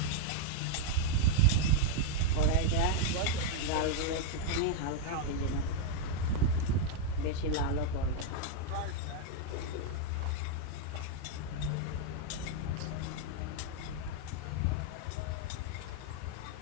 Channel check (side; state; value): both; different; correlation 0.00